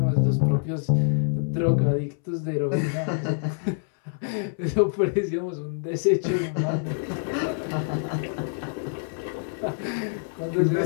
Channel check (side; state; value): right; silent; 61 dB below the other